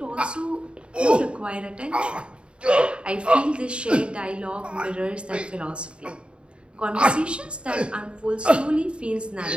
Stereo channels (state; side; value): late; left; 0.055 ms